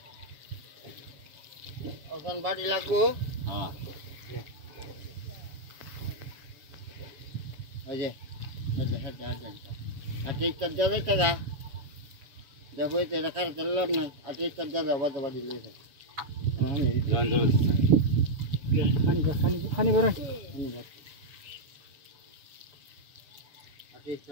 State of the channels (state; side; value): late; left; 7.0 ms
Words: বাড়ি লাগবো দেখো এটা কার চললাম না আজকে ইচ্ছা দাদা বাদা বাড়ি লেগে খানি বড়